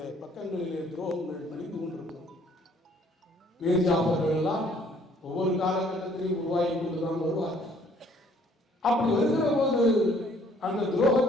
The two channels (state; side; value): normal; both; correlation 0.61